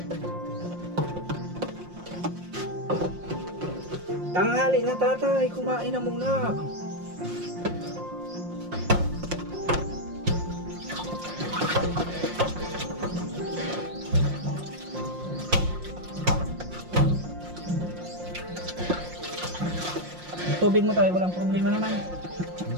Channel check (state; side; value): late; left; 5.6 ms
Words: Tanghali na tatay, kumain na muna. Tubig mo tayo, walang problema naman.